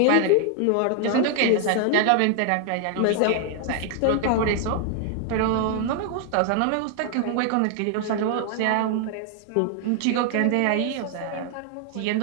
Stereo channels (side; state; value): both; different; correlation 0.00